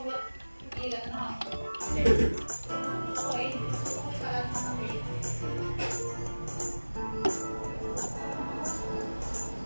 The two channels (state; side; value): inverted; both; correlation -1.00